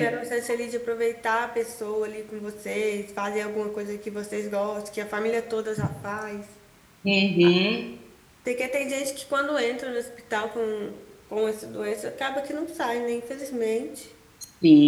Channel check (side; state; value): both; identical; correlation 1.00